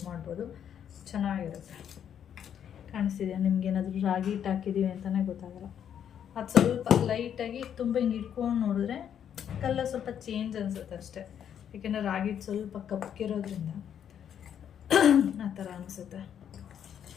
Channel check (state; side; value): quieter; right; 9.0 dB